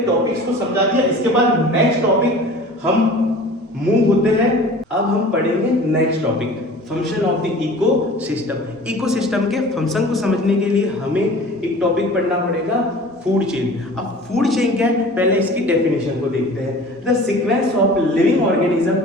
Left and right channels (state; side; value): normal; both; correlation 0.42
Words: टॉपिक्स को समझा दिया। इसके बाद नेक्स्ट टॉपिक हम मूव होते हैं। अब हम पढ़ेंगे next topic, function of the ecosystem. Ecosystem के फंक्शन को समझने के लिए हमें एक टॉपिक पढ़ना पड़ेगा, फूड चेन। अब फूड चेन क्या है, पहले इसकी डेफिनेशन को देखते हैं। The sequence of living organism